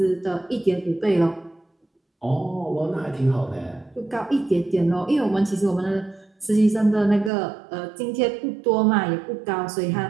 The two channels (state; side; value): drops out; left; at 7.3 s